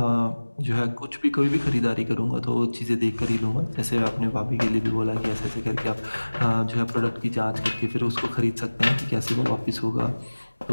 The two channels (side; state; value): both; inverted; correlation -1.00